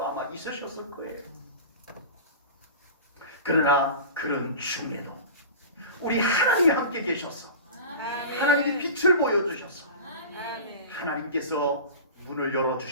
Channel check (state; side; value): inverted; both; correlation -0.35